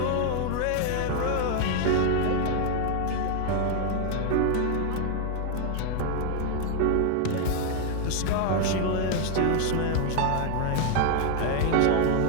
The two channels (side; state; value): both; different; correlation 0.00